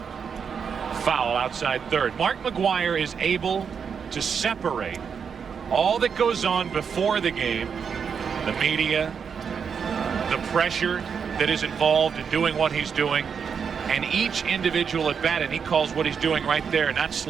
foul outside third. Mark McGwire is able to separate all that goes on before the game, the media, the pressure that is involved in doing what he's doing, and each individual at bat, and he calls what he's doing right there, not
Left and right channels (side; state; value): left; quieter; 6.6 dB